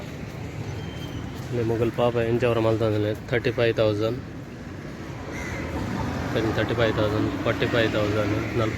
ಮುಗಲ್ ಪಾಪ ಎಂಚವರ ಮಲ್ತಂದ್ರೆ 35,000 35,000 45,000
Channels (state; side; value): identical; both; correlation 1.00